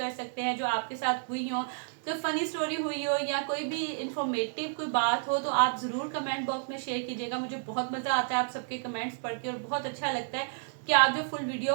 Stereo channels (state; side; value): silent; left; digital silence